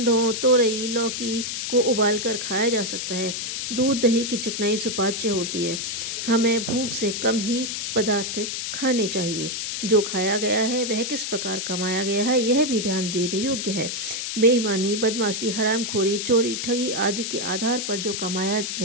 तोरई, लौकी को उबालकर खाया जा सकता है। दूध, दही की चिकनाई सुपाच्य होती है। हमें भूख से कम ही पदार्थ खाने चाहिए। जो खाया गया है वह किस प्रकार कमाया गया है यह भी ध्यान देने योग्य है। बेईमानी, बदमाशी, हरामखोरी, चोरी, ठगी आदि के आधार पर जो कमाया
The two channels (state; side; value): noise; left; hiss, 3 dB below the sound